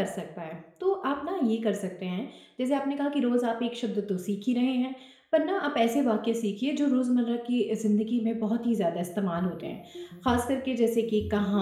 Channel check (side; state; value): both; identical; correlation 1.00